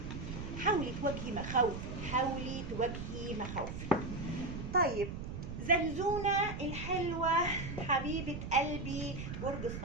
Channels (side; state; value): right; noise; rumble, 6 dB below the sound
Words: حاولي تواجهي مخاوفك، حاولي تواجهي مخاوفك. طيب زنزونة الحلوة حبيبة قلبي برج